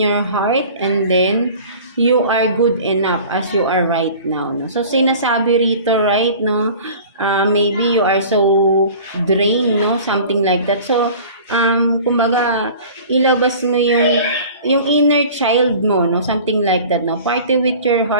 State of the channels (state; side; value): inverted; both; correlation -0.43